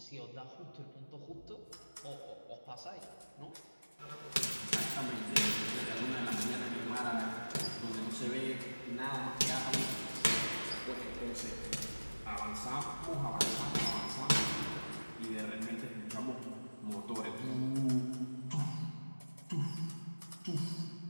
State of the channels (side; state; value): both; inverted; correlation -1.00